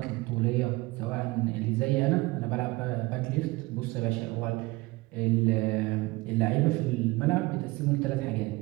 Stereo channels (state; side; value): quieter; left; 22.0 dB